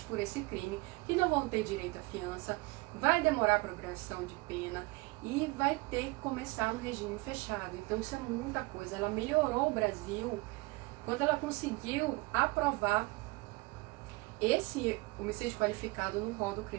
por esse crime, que não vão ter direito à fiança, vai demorar a progressão de pena e vai ter que começar no regime fechado. Então isso é muita coisa. Ela melhorou o Brasil quando ela conseguiu aprovar esse homicídio qualificado no rol do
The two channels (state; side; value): quieter; left; 24.2 dB